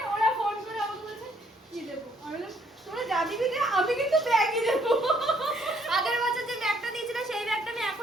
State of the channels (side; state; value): both; normal; correlation 0.67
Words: ওরা ফোন করে আমাকে বলছে কি দেবো, আমি বললাম তোরা যা দিবি দে, আমি কিন্তু ব্যাগই দেবো। আগের বছর যে ব্যাগটা দিয়েছিল সেই ব্যাগটা আমি